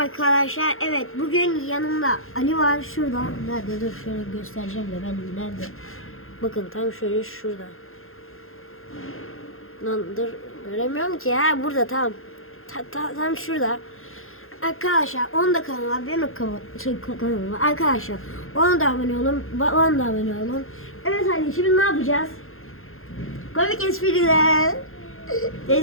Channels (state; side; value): late; right; 0.61 ms